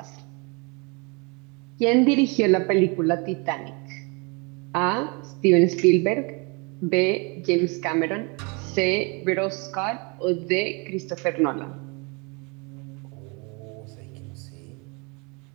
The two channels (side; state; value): left; quieter; 31.0 dB